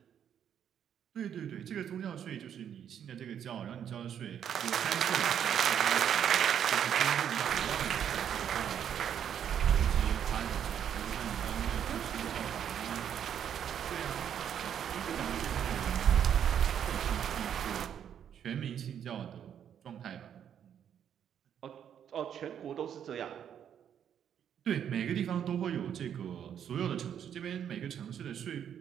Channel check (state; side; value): quieter; left; 9.0 dB